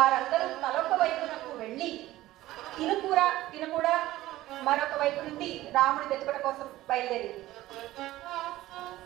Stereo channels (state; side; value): quieter; left; 16.0 dB